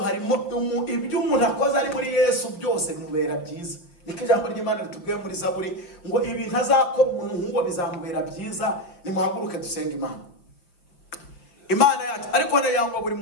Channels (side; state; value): right; late; 5.7 ms